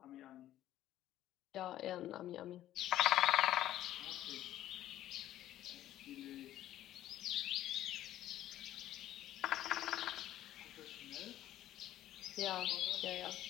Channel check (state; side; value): quieter; right; 13.1 dB